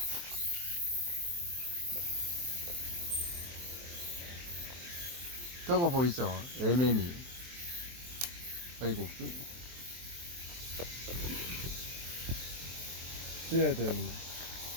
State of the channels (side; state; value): left; late; 23 ms